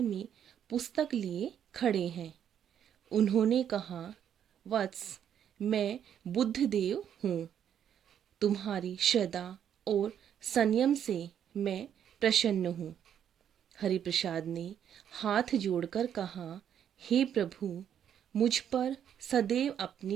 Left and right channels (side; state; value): left; quieter; 9.2 dB